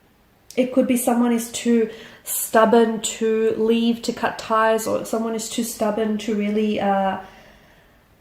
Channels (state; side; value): identical; both; correlation 1.00